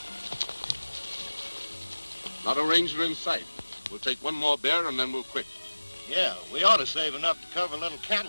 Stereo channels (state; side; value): inverted; both; correlation -1.00